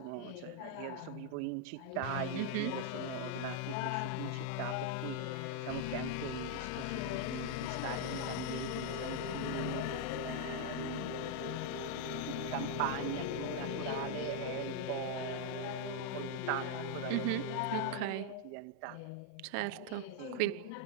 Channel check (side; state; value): both; different; correlation 0.00